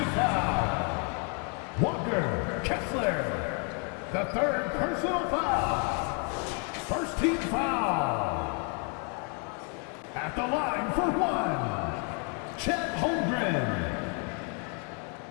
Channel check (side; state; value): right; quieter; 38.1 dB